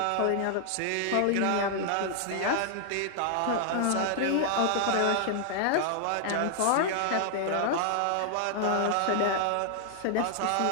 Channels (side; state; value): both; different; correlation 0.00